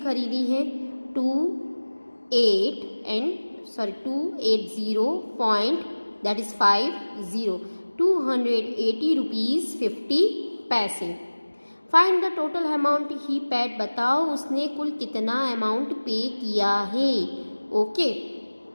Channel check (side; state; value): both; inverted; correlation -1.00